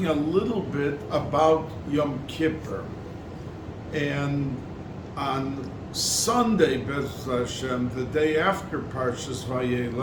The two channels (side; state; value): both; identical; correlation 1.00